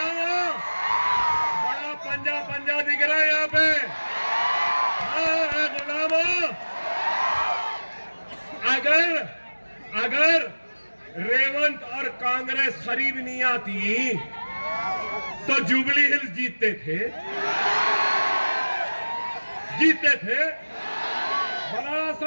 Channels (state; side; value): inverted; both; correlation -1.00